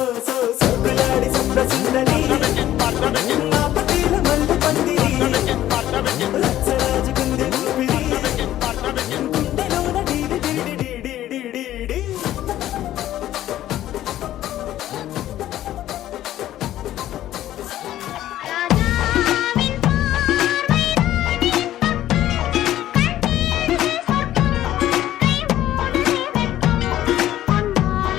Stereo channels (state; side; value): quieter; right; 13.2 dB